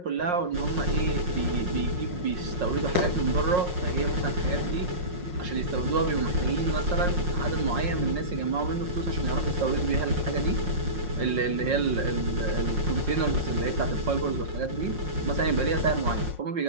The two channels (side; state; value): left; late; 5.6 ms